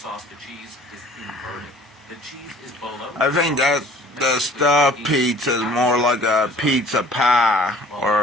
to cheese is inverted. The cheese is below. I think that the stuffed pizza is more like a pizza pie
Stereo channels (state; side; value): normal; both; correlation 0.51